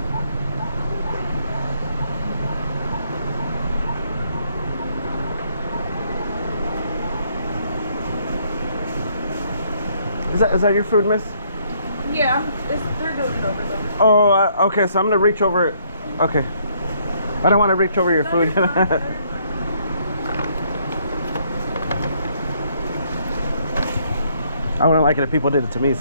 Is that your food, miss? Yeah, they're doing it over there. Oh, okay, so I'm gonna reach over it. Okay. I don't want to reach over your food. I wouldn't like it if people did it to me,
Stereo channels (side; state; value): both; inverted; correlation -0.68